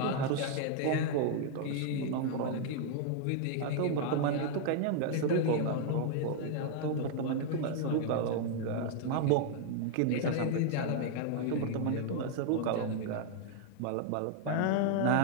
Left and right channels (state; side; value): different; both; correlation 0.00